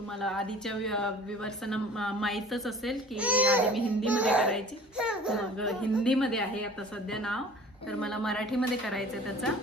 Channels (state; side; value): normal; both; correlation 0.46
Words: आधीच्या व्ह्यूअर्सना माहीतच असेल की आधी मी हिंदीमध्ये करायची, मग हिंदीमध्ये आहे आता सध्या नाव. तर मला मराठीमध्ये करायचं आहे